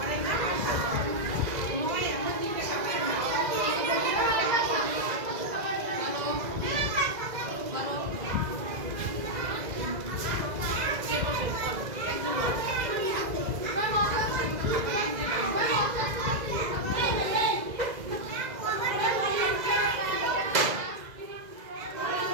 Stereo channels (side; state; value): left; late; 2.0 ms